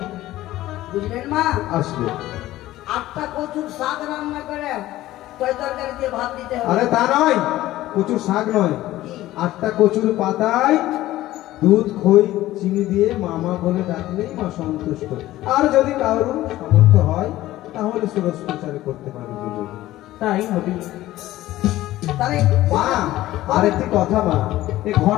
বুঝলেন মা? আসবে। 8টা কচুর শাক রান্না করে তৈ তরকারি দিয়ে ভাত দিতে হবে। আরে তা নয়, কচুর শাক নয়, কি? 8টা কচুর পাতায় দুধ খই চিনি দিয়ে মামা বলে ডাকলেই মা সন্তুষ্ট। আর যদি কারোর সামর্থ্য হয় তাহলে সুরজ প্রচার করতে পারে দুজন। তাই হবে। তাহলে মা, আরেকটি কথা মা, এই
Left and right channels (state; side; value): quieter; right; 15.6 dB